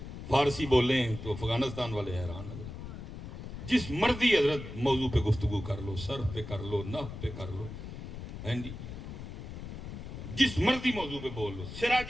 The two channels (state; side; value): noise; left; rumble, 9 dB below the sound